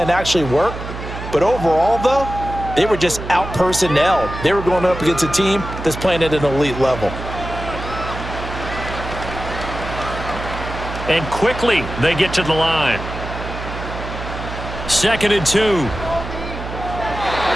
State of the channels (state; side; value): noise; right; hum, 8 dB below the sound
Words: actually worked. But overall, though, they were just out-personnelled. They were going up against a team that's playing at an elite level. And quickly, they get to the line. 2nd and 2.